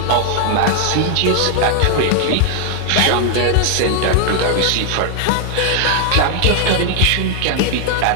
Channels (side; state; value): both; different; correlation 0.00